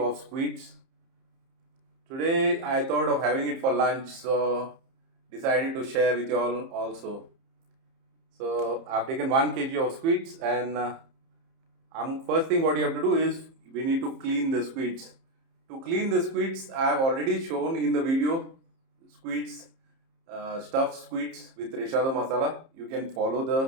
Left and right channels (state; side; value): late; left; 30 ms